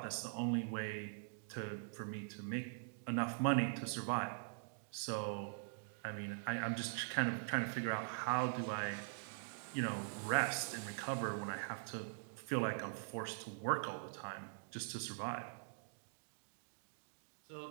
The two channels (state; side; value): silent; left; digital silence